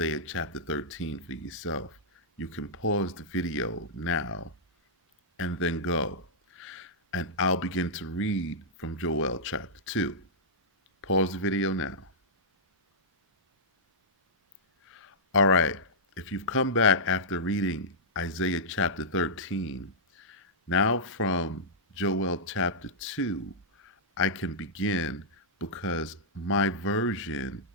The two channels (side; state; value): both; normal; correlation -0.12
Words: chapter 13 for yourself. You can pause the video now and then go. And I'll begin to read from Joel chapter 2. Pause the video now. All right, if you've come back after reading Isaiah chapter 13, now from Joel chapter 2, I can begin because my version